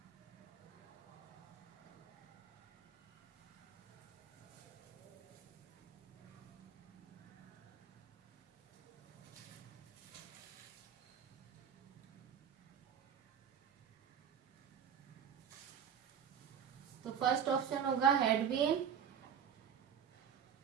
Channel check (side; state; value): left; quieter; 8.1 dB